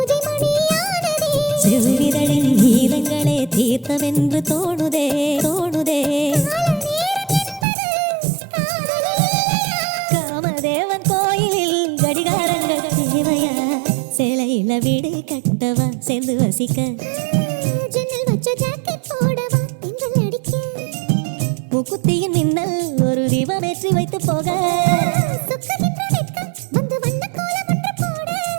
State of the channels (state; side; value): drops out; left; at 7.7 s